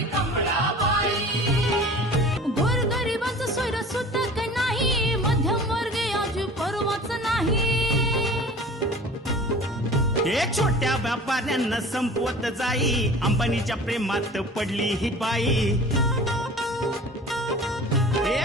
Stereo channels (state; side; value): normal; both; correlation 0.42